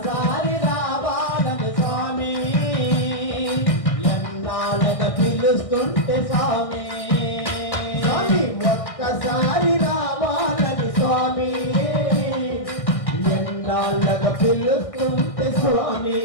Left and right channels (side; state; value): right; late; 1.6 ms